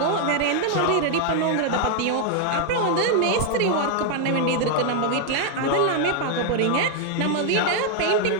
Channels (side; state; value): both; different; correlation 0.00